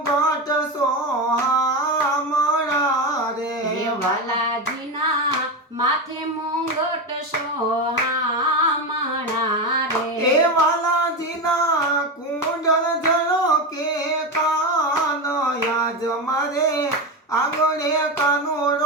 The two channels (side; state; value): both; normal; correlation 0.16